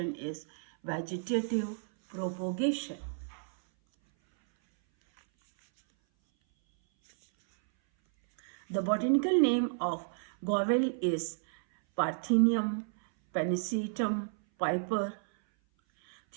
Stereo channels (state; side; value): silent; left; 57 dB below the other